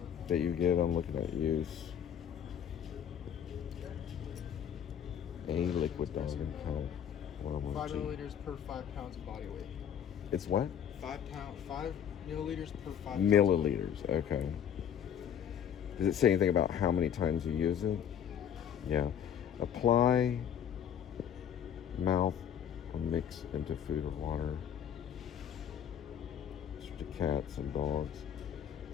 that you give? I'm looking at use. A liquid thousand pound. 5 milliliters per 5 pounds of body weight. It's what? 5 milliliters per 5 Milliliters. Okay. Does it say anything about how many times you use it? Yeah. Apply, mouth, or mix into food or water. To cats and dogs.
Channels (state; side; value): quieter; right; 8.9 dB